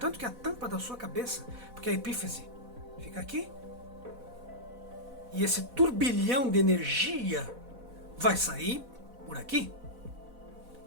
que a tampa da sua cabeça, porque a epífise fica aqui, e esse turbilhão de energia vai sair por aqui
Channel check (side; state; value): left; late; 4.1 ms